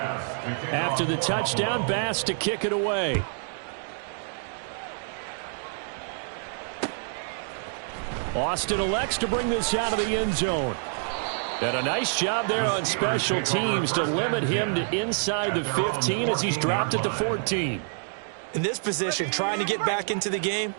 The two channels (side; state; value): left; silent; 60 dB below the other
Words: After the touchdown, Bass to kick it away. Austin elects to bring this out of the end zone. And a nice job there on special teams to limit him to inside the 15 as he's dropped it to 14. In this position, trying to get back into the game,